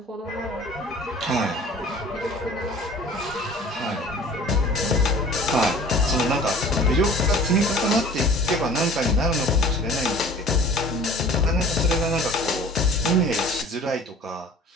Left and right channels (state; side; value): normal; both; correlation 0.45